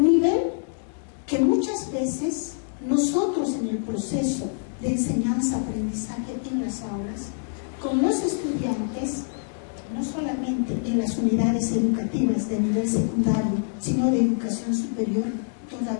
que muchas veces nosotros en el proceso de enseñanza-aprendizaje en las aulas, con los estudiantes, no solamente en las unidades educativas de nivel secundario, sino de educación superior,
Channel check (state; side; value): silent; right; 61 dB below the other